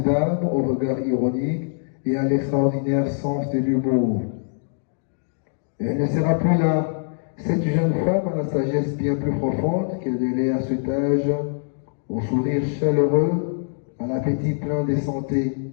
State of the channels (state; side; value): silent; right; digital silence